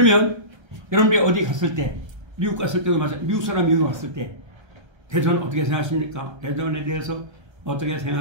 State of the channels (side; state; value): left; late; 1.3 ms